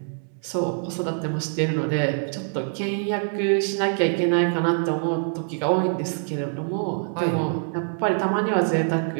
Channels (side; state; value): left; silent; 62 dB below the other